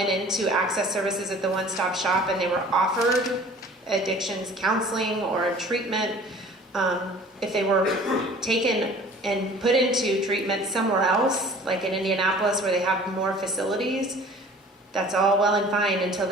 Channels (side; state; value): both; normal; correlation 0.47